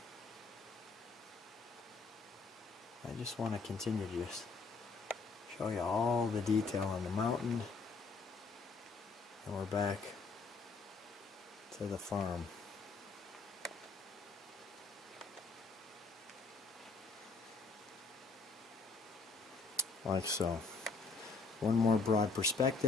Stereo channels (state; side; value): quieter; right; 4.1 dB